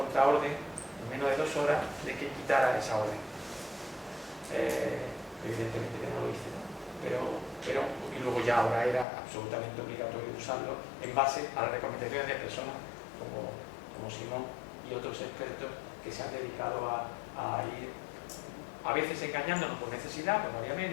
en menos de 2 horas de que quitara esa orden. Evidentemente que no lo hice, ¿no? Pero y luego ya ahora era absolutamente obligatorio usarlo en base a las recomendaciones de personas como Simón y otros expertos que se han dedicado a ir a veces engañándonos por necesidad, pues no había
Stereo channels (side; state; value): right; drops out; at 9.1 s